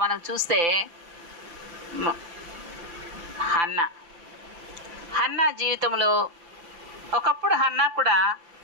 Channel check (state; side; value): late; left; 5.9 ms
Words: మనం చూస్తే హన్నా జీవితంలో ఒకప్పుడు హన్నా కూడా